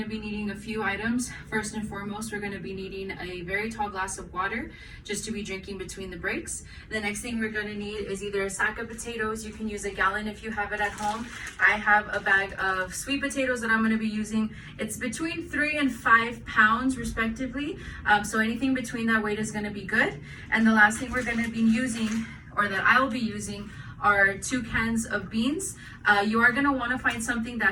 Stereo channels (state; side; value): identical; both; correlation 1.00